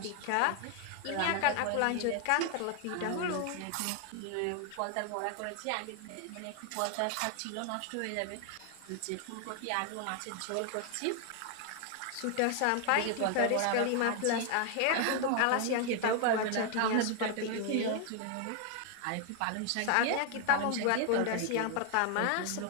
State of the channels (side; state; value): both; different; correlation 0.00